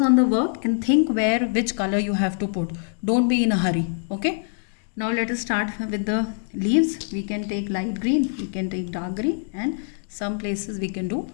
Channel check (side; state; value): right; silent; digital silence